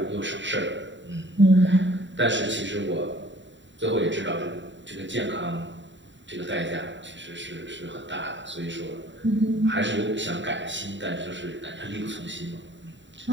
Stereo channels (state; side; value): late; left; 0.54 ms